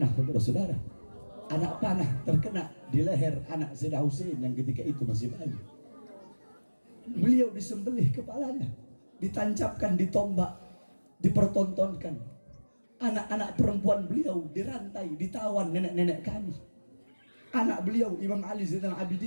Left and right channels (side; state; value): both; inverted; correlation -1.00